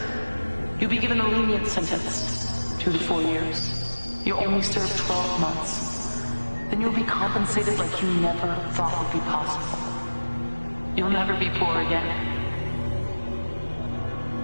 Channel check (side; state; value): both; inverted; correlation -1.00